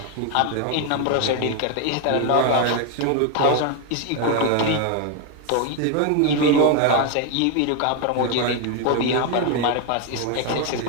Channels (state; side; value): different; both; correlation 0.01